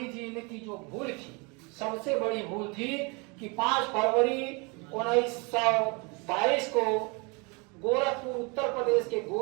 जी ने की जो भूल थी, सबसे बड़ी भूल थी कि 5 फरवरी 1922 को गोरखपुर, उत्तर प्रदेश के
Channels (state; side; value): quieter; left; 30.1 dB